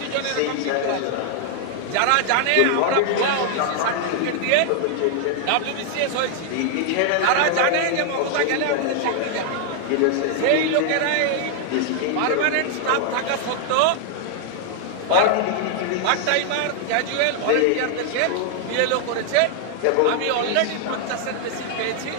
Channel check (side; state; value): both; different; correlation 0.00